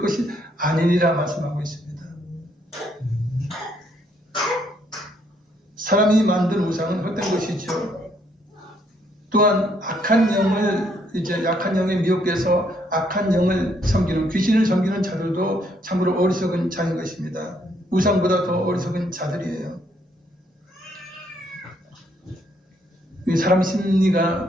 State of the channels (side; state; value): both; normal; correlation 0.70